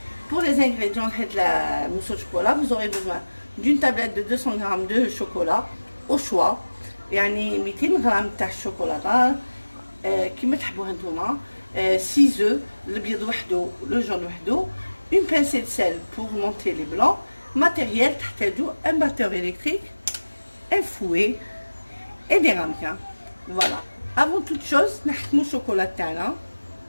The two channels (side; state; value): both; inverted; correlation -1.00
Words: Pour les ingrédients de la mousse au chocolat, vous aurez besoin d'une tablette de 200 g de chocolat au choix. يعني 200 g تاع الشوكولاته كيما تحبوها نتوما. 6 œufs, البيض وحده le jaune وحده. Une pincée de sel pour monter les blancs. Matériel, un batteur électrique, un fouet et des ramequins. Voilà. Avant toute chose, نحكموا الشوكولا تاعنا